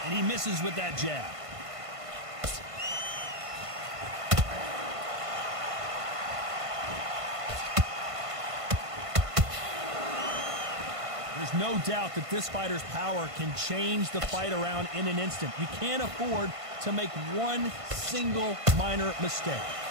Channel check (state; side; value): late; left; 1.5 ms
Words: And he misses with that jab. There's no doubt that this fighter's power can change the fight around in an instant. You can't afford to make one single minor mistake.